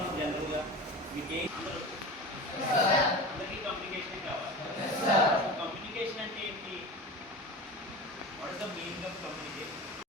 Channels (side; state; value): both; normal; correlation 0.32